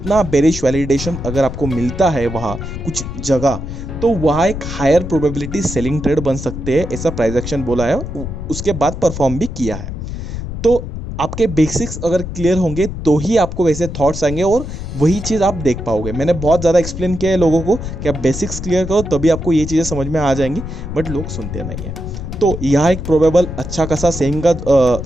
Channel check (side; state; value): left; noise; rumble, 7 dB below the sound